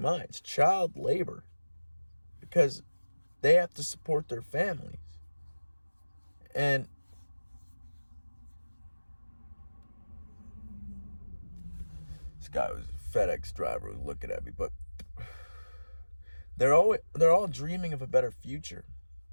child labor, because they have to support their families. And this guy was a FedEx driver, was looking at me, but they're all dreaming of a better future.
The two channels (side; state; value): both; inverted; correlation -1.00